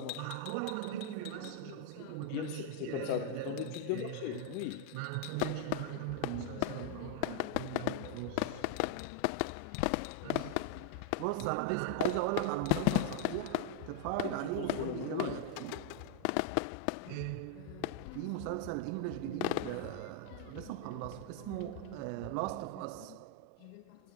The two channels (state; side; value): different; both; correlation 0.00